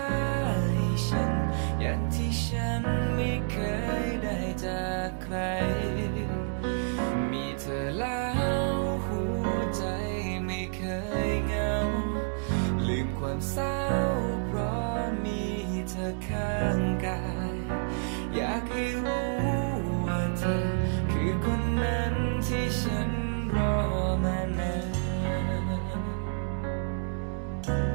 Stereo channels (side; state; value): left; silent; 58 dB below the other